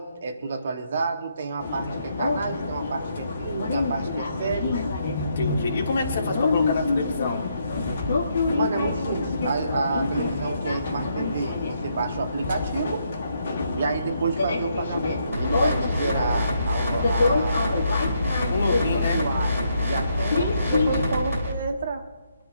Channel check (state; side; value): inverted; both; correlation -0.75